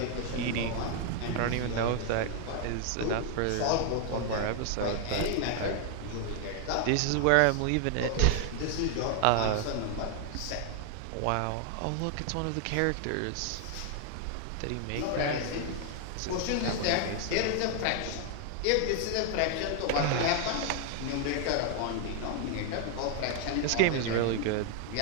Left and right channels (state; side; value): different; both; correlation 0.00